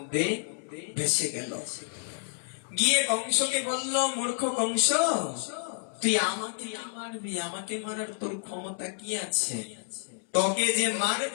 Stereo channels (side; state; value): right; silent; 58 dB below the other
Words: ভেসে গেল। গিয়ে কংসকে বলল, মূর্খ কংস, তুই আমাকে মারবি? আমাকে মারার তোর ক্ষমতা কি আছে? তোকে যে